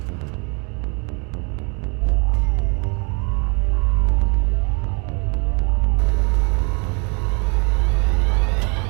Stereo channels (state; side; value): quieter; left; 33.1 dB